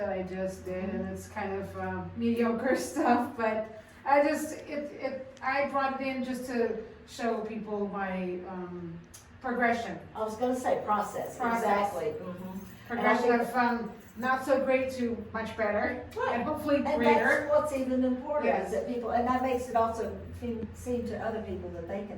I just did, and it's kind of mediocre stuff, but I brought it in just to show people my progression. I was gonna say process, exactly. Mhm. Progression And I think- from not so great to much better, Right. and hopefully And greater. that's what's even important, Yes. is that people, and that makes it also seem to other people that they can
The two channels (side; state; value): both; identical; correlation 1.00